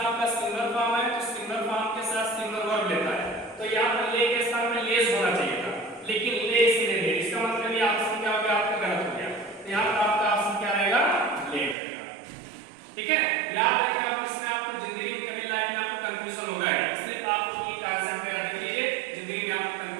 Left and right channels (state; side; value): drops out; left; at 11.8 s